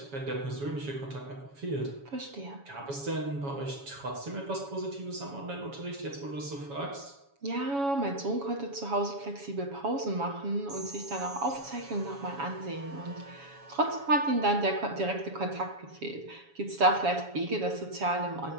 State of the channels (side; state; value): left; late; 7.2 ms